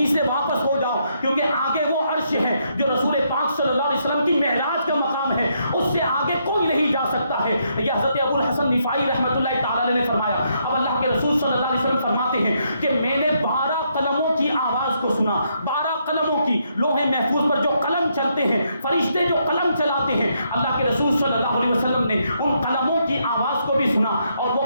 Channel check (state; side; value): inverted; both; correlation -0.76